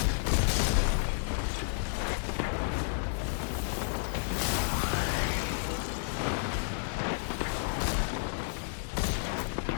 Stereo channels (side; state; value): right; silent; 57 dB below the other